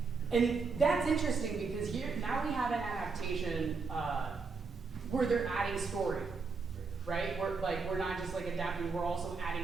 And that's interesting because now we have an adaptation where they're adding story, right? We're not just like adapting, we're also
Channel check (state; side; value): quieter; left; 4.7 dB